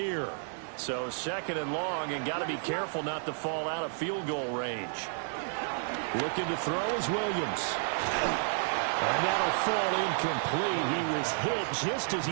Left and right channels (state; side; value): silent; left; digital silence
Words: So second and long, and got to be careful not to fall out of field goal range. Looking to throw is Williams. And that'll fall incomplete. He was hit just as